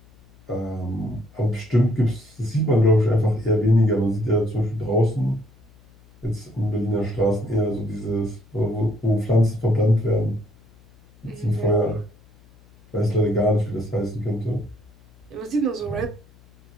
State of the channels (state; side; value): noise; left; hum, 27 dB below the sound